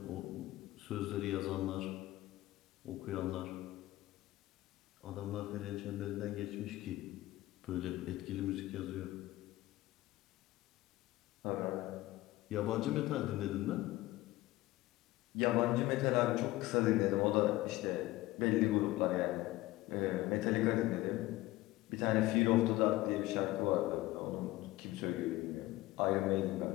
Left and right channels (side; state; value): right; quieter; 17.7 dB